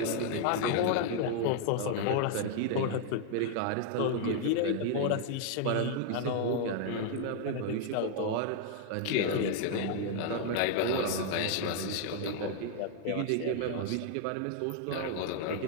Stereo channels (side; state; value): both; different; correlation 0.00